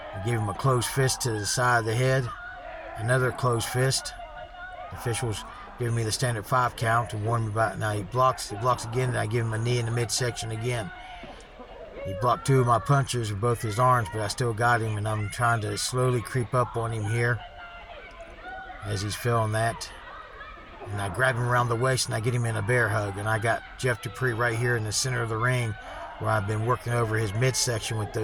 I give him a closed fist to the side of the head. Another closed fist. The officials giving me the standard 5 count to warn me about it. Now he blocks again, and I give him a knee in the midsection again. He blocked 2 of my punches with both his arms, but I still got him, and I'm trying to slowly creep up on him here as he's feeling that. And I grab him around the waist, and I get him in a bear hug. And I got Jeff Dupree right here in the center of the ring, where I've been working over his midsection with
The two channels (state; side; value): identical; both; correlation 1.00